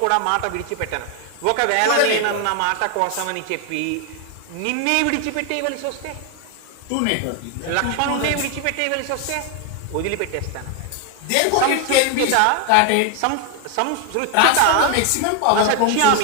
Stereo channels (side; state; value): both; different; correlation 0.01